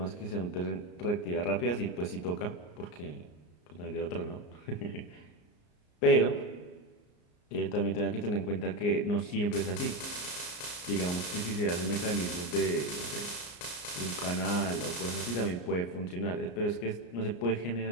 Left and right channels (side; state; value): right; late; 34 ms